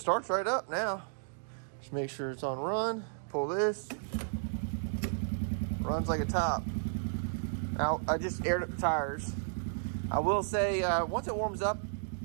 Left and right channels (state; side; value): silent; left; digital silence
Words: right up now. Just make sure it's on run. Pull this. Runs like a top. Now, I just aired up the tires. I will say, once it warms up,